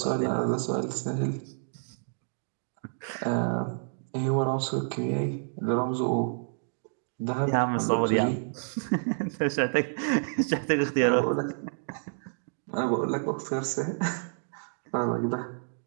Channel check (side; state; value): left; silent; digital silence